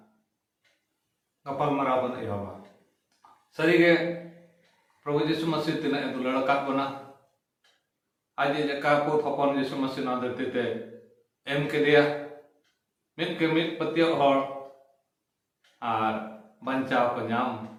गपाल माराव बन एहबा सरीगे प्रभु यीशु मसीह तिना दुलाड़ काट बना आज जका को थपन यीशु मसीह ना धरती ते एम केदिया मित के मित पतियो हर आर बंचाव को नाम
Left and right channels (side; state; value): both; identical; correlation 1.00